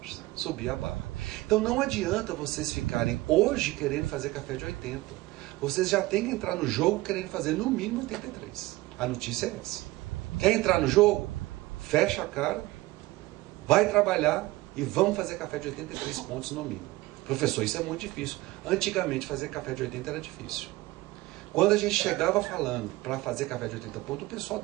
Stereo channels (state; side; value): quieter; left; 19.3 dB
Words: subir a barra. Então não adianta vocês ficarem hoje querendo fazer café de 80. Vocês já têm que entrar no jogo querendo fazer no mínimo 83. A notícia é essa. Quer entrar no jogo? Fecha a cara, vai trabalhar e vamos fazer café de 83 pontos no mínimo. Professor, isso é muito difícil. Antigamente fazer café de 80 era difícil. Quando a gente chegava falando para fazer café de 80 pontos, o pessoal